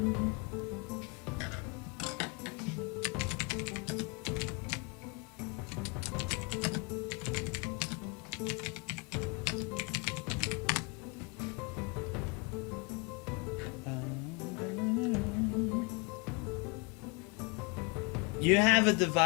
You have a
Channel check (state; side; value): quieter; right; 29.6 dB